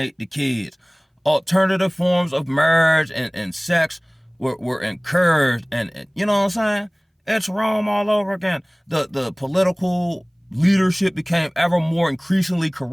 the kids. Alternative forms of marriage and sex were encouraged, and you know what I'm saying? It's Rome all over again. The political leadership became ever more increasingly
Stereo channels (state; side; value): identical; both; correlation 1.00